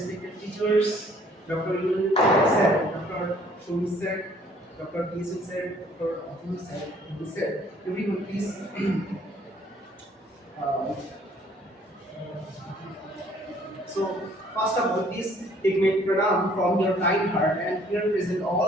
teachers, Dr. Yul sir, Dr. Shomi sir, Dr. Kisun sir, Dr. Atul sir, everyone please. uh, So, first of all, please take my pranam from your kind heart and here present all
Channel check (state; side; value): normal; both; correlation 0.59